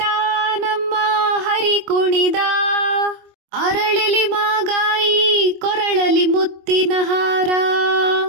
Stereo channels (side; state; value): left; late; 25 ms